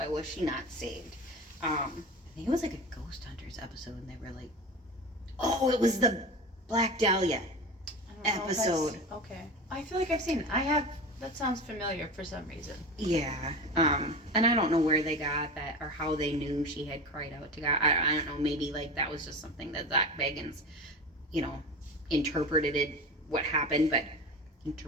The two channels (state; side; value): normal; both; correlation 0.28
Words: she not saved? I think it was like a Ghost Hunters episode, and they were like, oh, it was the Black Dahlia episode. Okay. I feel like I've seen it. That sounds familiar for some reason. Yeah. And I don't know where they got that or how they knew she had cried out to God. I don't know. Maybe like that was just something that Zach Bagans, you know, interpreted it, what happened, but